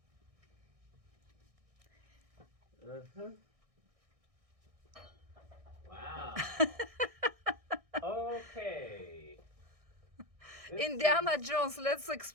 Uh-huh. Wow. Okay. Indiana Jones, let's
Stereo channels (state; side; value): late; left; 1.6 ms